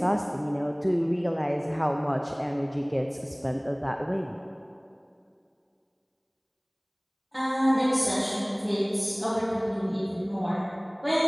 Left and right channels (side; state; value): both; identical; correlation 1.00